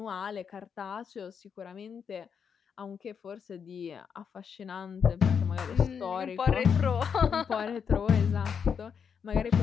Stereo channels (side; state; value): right; quieter; 6.9 dB